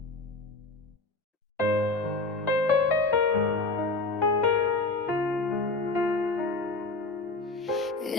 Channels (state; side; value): quieter; right; 3.3 dB